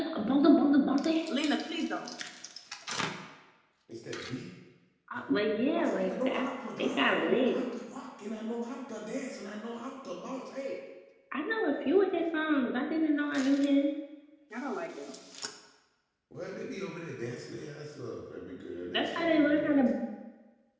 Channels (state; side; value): identical; both; correlation 1.00